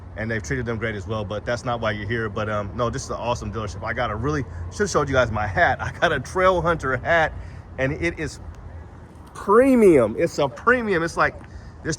and they've treated them great as well. But that's not why you're here. But no, this is an awesome dealership. I got a really, should have showed you guys my hat. I got a Trail Hunter hat, and it is premium. It's a premium. It's like, this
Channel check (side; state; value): both; identical; correlation 1.00